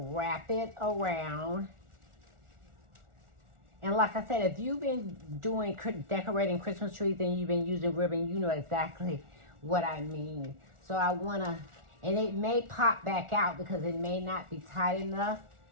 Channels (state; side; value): late; left; 1.4 ms